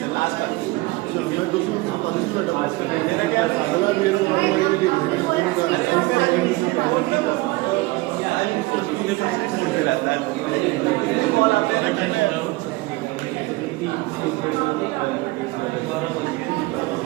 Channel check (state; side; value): quieter; left; 21.6 dB